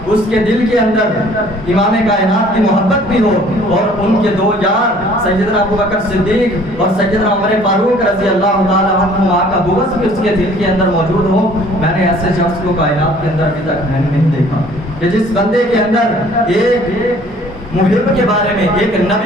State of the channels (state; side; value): normal; both; correlation 0.55